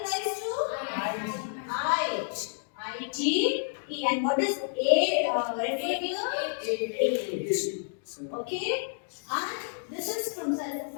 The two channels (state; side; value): silent; right; digital silence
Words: Okay? And this is from sulfur